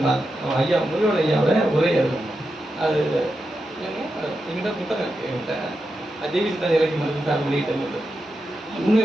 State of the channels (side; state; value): both; normal; correlation 0.88